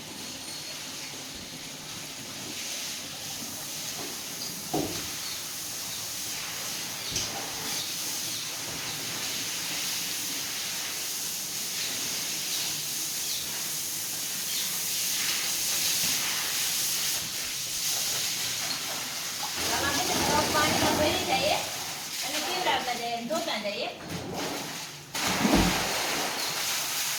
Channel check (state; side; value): identical; both; correlation 1.00